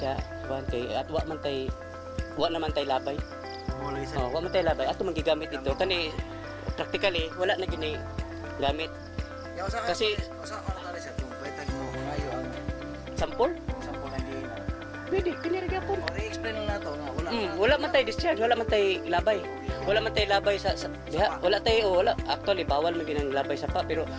kuan kay at wa naman tay labay. Wa man tay labay. Ato man gigamit ito kani practically wala na gini gamit. Kasi usa ano tali sa kung pwede mo ngayo ang sample lang din. pwede kini ra gyapon. I-explain lang nato nga wala man tay discharge, wala man tay labay. Wala man tay labay sa diha, wala actually bawal man ginang labay sa pa pero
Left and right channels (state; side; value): identical; both; correlation 1.00